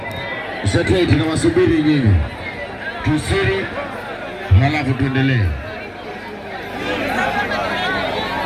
Sasa tunawasubiri nyinyi. Tusiri halafu tuendelee.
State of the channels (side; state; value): both; identical; correlation 1.00